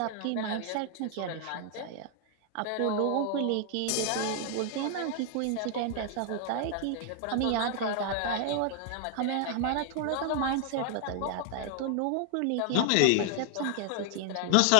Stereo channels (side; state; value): both; different; correlation 0.00